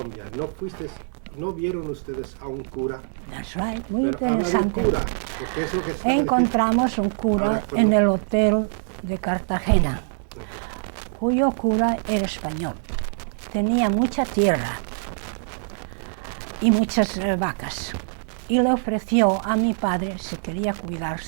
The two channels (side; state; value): left; silent; 63 dB below the other